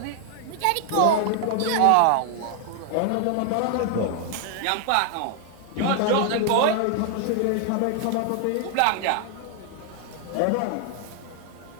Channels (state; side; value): different; both; correlation 0.00